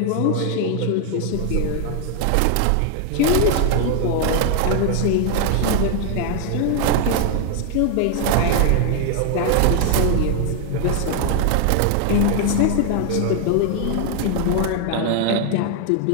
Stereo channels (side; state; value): both; different; correlation 0.00